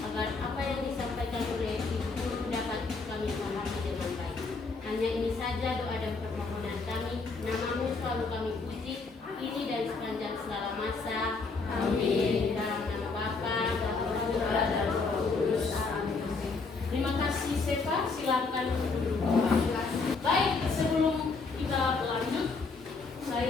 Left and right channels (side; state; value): right; quieter; 4.2 dB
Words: apa yang disampaikan oleh Ibu Guru dapat kami pahami dengan baik. Hanya ini saja doa dan permohonan kami. Nama-Mu selalu kami puji, ini dari sepanjang segala masa. Amin. Dalam nama Bapa, Putra dan Roh Kudus. Terima kasih Sefa, silakan duduk. Baik, sebelum kita lanjut,